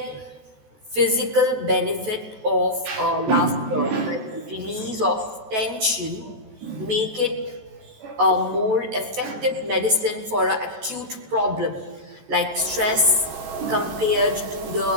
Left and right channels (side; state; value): left; late; 14 ms